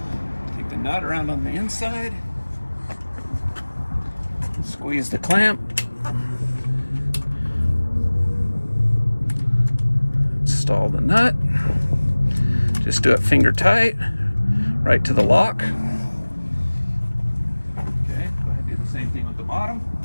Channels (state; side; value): inverted; both; correlation -1.00